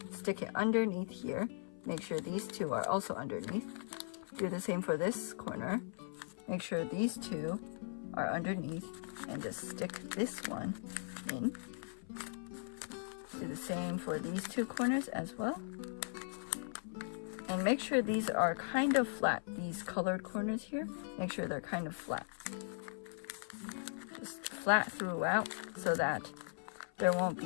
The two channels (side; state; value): right; silent; 52 dB below the other